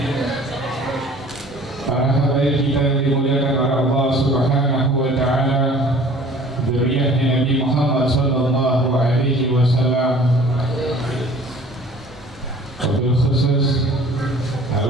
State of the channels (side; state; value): both; normal; correlation 0.49